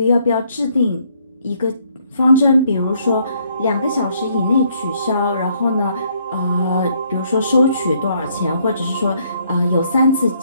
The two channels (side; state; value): both; inverted; correlation -0.69